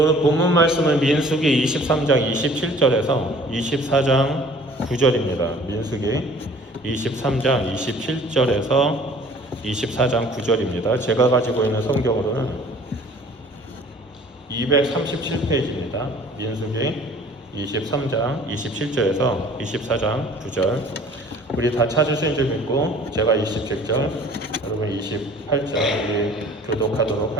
본문 말씀은 민수기 23장 27절에서 24장 9절입니다. 민수기 23장 27절에서 24장 9절입니다. 제가 가지고 있는 성경으로는 237페이지입니다. 민수기 23장 27절에서 24장 9절. 우리 다 찾으신 줄 믿고 제가 27절, 여러분 28절 우리 교독하도록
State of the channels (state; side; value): normal; both; correlation 0.51